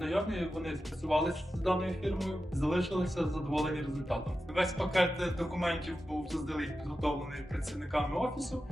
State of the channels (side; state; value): both; normal; correlation 0.92